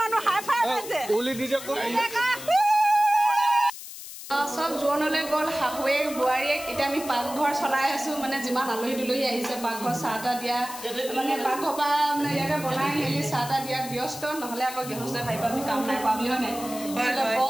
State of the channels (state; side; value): noise; left; hiss, 12 dB below the sound